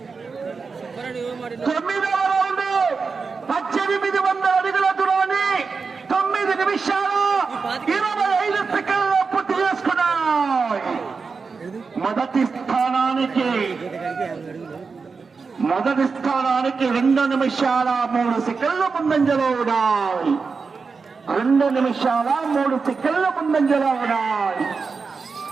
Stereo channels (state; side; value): quieter; left; 4.9 dB